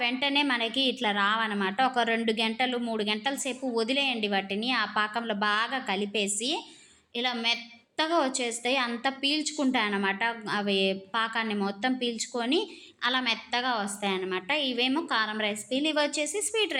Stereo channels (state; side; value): identical; both; correlation 1.00